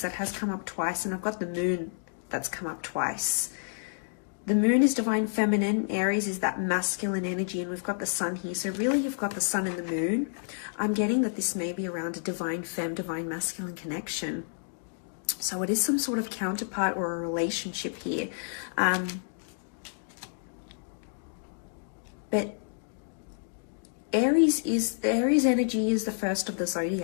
that has come up twice, and I've got the Moon that's come up twice. The Moon is divine feminine, Aries is that masculine energy, and we've got the Sun here. So really, you've got the Sun and the Moon. I'm getting that this may be around a divine femme, divine masculine connection. So it is some sort of counterpart or a relationship here. But Aries energy is the first of the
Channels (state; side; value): silent; right; digital silence